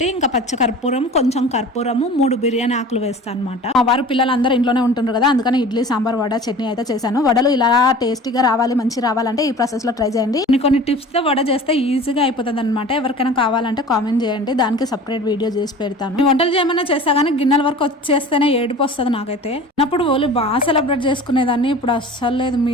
ఇంకా పచ్చ కర్పూరం, కొంచెం కర్పూరము, 3 బిర్యానీ ఆకులు వేస్తాను అనమాట. వారు పిల్లలు అందరూ ఇంట్లోనే ఉంటుండ్రు కదా, అందుకని ఇడ్లీ, సాంబార్, వడ, చట్నీ అయితే చేశాను. వడలు ఇలా టేస్టీగా రావాలి, మంచి రావాలంటే ఈ ప్రాసెస్ లో ట్రై చేయండి. కొన్ని టిప్స్ తో వడ చేస్తే ఈజీగా అయిపోతుంది అనమాట. ఎవరికైనా కావాలంటే కామెంట్ చేయండి, దానికి సపరేట్ వీడియో చేసి పెడతాను. వంటలు చేయమన్నా చేస్తా కానీ గిన్నెల వరకు వచ్చేస్తేనే ఏడుపు వస్తుంది నాకైతే. అప్పుడు ఓలీ బాగా సెలబ్రేట్ చేసుకునేదాన్ని, ఇప్పుడు అస్సలు లేదు.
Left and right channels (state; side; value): normal; both; correlation 0.40